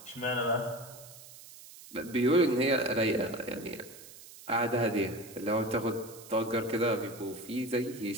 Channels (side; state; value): right; noise; hiss, 18 dB below the sound